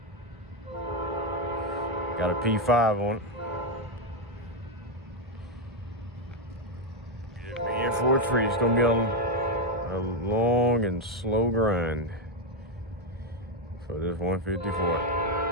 Got a P5 on it. Being for a treat, it's gonna be a long and slow grind for this 154.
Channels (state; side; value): normal; both; correlation 0.04